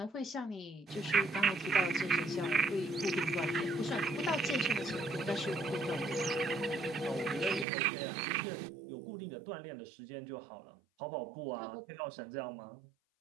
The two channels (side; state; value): left; drops out; at 7.7 s